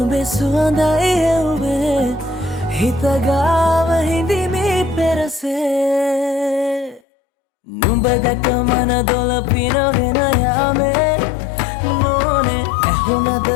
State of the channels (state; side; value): drops out; right; at 7.0 s